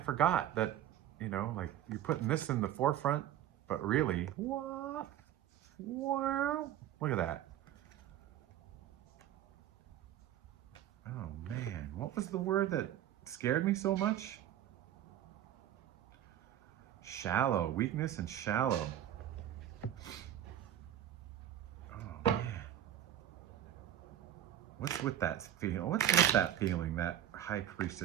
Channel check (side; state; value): left; quieter; 11.4 dB